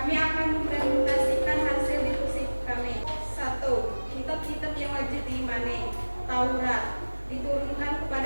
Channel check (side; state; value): both; inverted; correlation -1.00